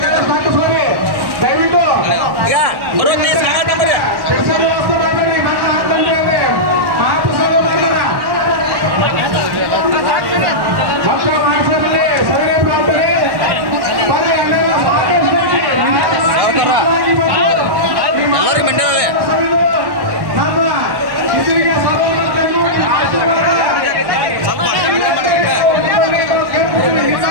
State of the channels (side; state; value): left; late; 1.1 ms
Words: ಹಾಕಿಸ್ಕೊಳ್ಳಿ. ದಯವಿಟ್ಟು ಕೆಲಸ ವ್ಯವಸ್ಥೆ ಮಾಡಬೇಡಿ. ಮತ್ತೆ ಹಾಕ್ತಂದ್ರೆ ಮಹಾಪ್ರಸಾದ ಮಾಡ್ತಾರ ಭಕ್ತ ಮಾಡಿಸಬೇಡಿ. ಸರಿ ಪ್ರಾರ್ಥನೆ ಬರ್ರಿ, ಅಲ್ಲೆಲ್ಲ ಸಾಕಷ್ಟು ಐತಿ. ನಿಧಾನವಾಗಿ ಬಂದು ನಮ್ಮ ಇದರಿಗೆ ಸರ್ವಮತಕ್ಕೂ ಆಶೀರ್ವಾದ ನಿಮ್ಮ